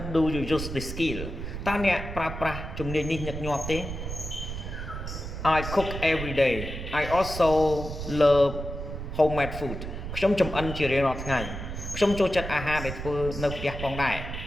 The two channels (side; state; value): right; noise; rumble, 7 dB below the sound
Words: do you use this skill តើអ្នកប្រើប្រាស់ជំនាញនេះញឹកញាប់ទេ I cook every day I also love homemade food ខ្ញុំចម្អិនជារៀងរាល់ថ្ងៃខ្ញុំចូលចិត្តអាហារដែលធ្វើនៅផ្ទះផងដែរ